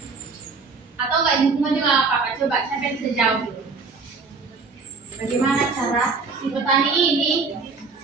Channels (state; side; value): quieter; left; 4.5 dB